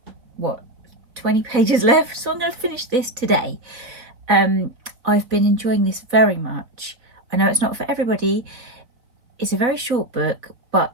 20 pages left, so I'm going to finish this today. I've been enjoying this very much. I know it's not for everybody. It's a very short book, but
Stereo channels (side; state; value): left; late; 4.0 ms